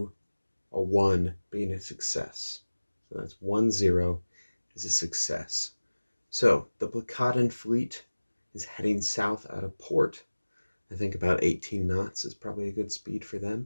a 1 being a success. So that's 1-0 is a success. So the Placatan fleet is heading south out of port. I think about 18 knots is probably a good speed for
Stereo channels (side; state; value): both; inverted; correlation -1.00